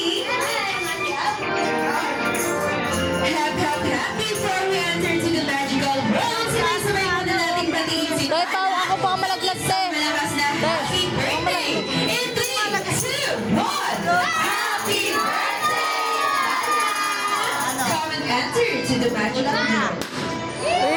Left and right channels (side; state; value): both; identical; correlation 1.00